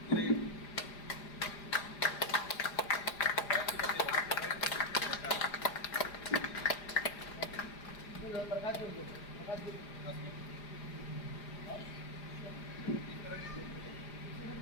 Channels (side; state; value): right; late; 4.9 ms